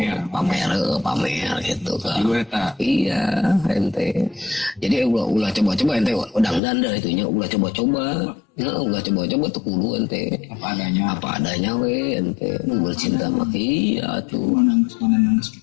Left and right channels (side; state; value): right; drops out; at 6.6 s